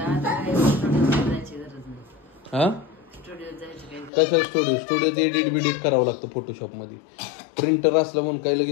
हा कशा स्टुडिओत एडिट करावं लागतं फोटोशॉप मध्ये. प्रिंटर असलं म्हणून काय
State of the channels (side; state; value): right; drops out; at 4.1 s